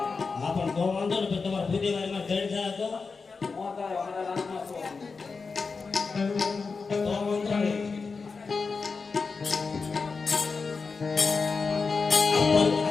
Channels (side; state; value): right; quieter; 4.7 dB